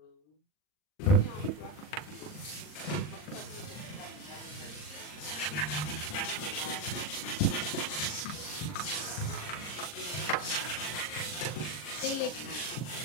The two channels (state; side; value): late; right; 40 ms